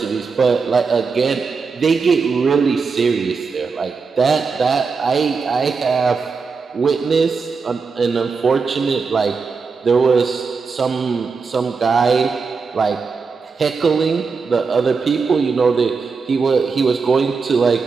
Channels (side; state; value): left; quieter; 4.9 dB